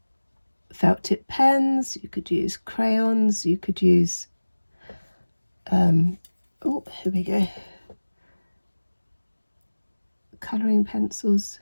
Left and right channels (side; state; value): both; inverted; correlation -1.00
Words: felt tip pens, you could use crayons, you could use oh, here we go, colouring pencils,